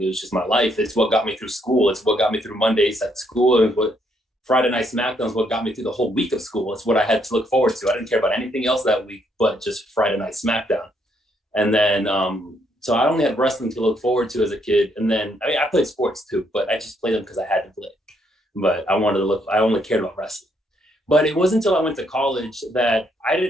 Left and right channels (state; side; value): normal; both; correlation 0.72